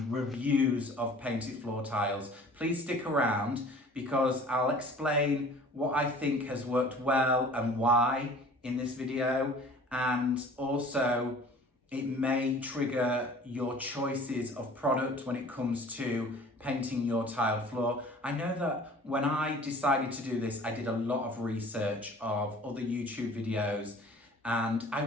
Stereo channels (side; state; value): both; normal; correlation 0.46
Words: reviews of painted floor tiles, please stick around because I'll explain what I think has worked well and why in this video, and also it may trigger your choices of product when it comes to painting your tiled floor. I know that when I decided to do this, I did a lot of research of other YouTube videos, and I